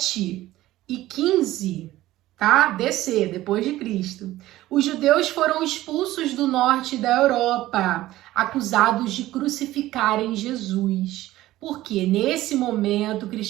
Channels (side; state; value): left; quieter; 15.8 dB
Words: e 15, tá? DC, depois de Cristo, os judeus foram expulsos do norte da Europa, acusados de crucificarem Jesus. Porque nesse momento o